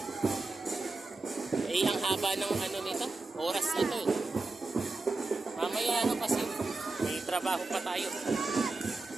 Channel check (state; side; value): quieter; left; 3.5 dB